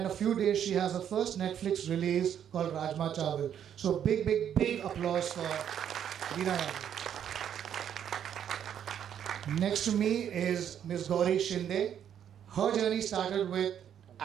in a few days she has her first Netflix release called Rajma Chawal. So big, big, big applause for Leena. Next to me is Ms. Gauri Shinde. Her journey started with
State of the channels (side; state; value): left; quieter; 9.3 dB